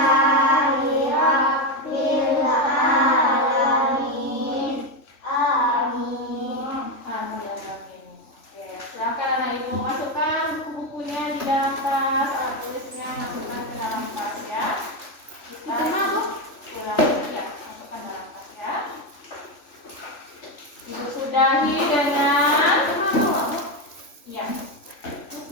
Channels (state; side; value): late; right; 3.4 ms